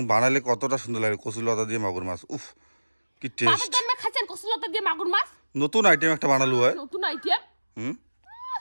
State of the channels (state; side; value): inverted; both; correlation -1.00